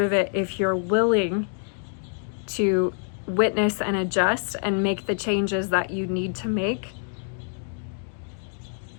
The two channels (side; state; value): right; silent; 61 dB below the other